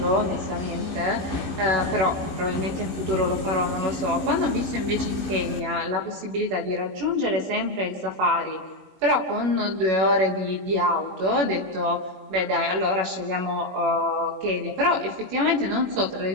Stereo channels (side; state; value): left; late; 21 ms